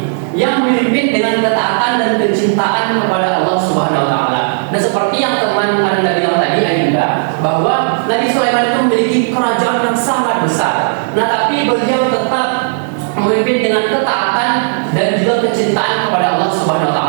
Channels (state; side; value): silent; left; digital silence